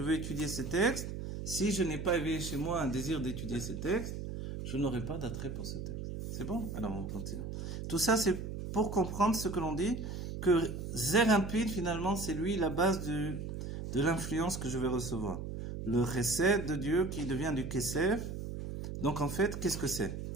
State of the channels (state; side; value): noise; right; hum, 6 dB below the sound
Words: veux étudier ces textes. Si je n'ai pas éveillé chez moi un désir d'étudier ces textes, je n'aurai pas d'attrait pour ce texte. C'est bon? Alors on continue. Tout ça, c'est pour comprendre ce que l'on dit, que Zer Impid, finalement, c'est lui la base de l'influence que je vais recevoir. Le chesed de Dieu qui devient du kesef. Donc en fait, qu'est-ce que c'est?